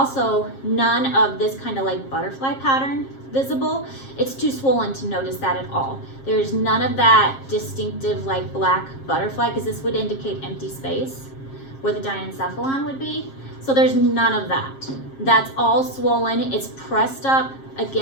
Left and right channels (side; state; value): right; late; 7.5 ms